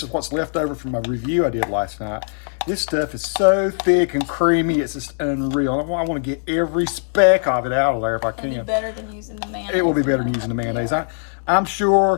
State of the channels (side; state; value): right; silent; digital silence